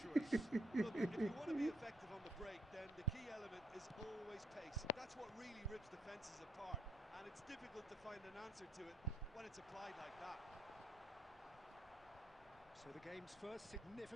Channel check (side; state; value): both; normal; correlation 0.72